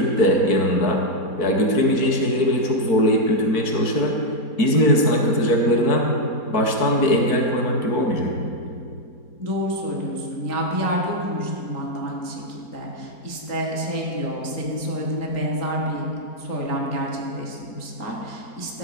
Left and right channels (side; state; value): right; late; 4.6 ms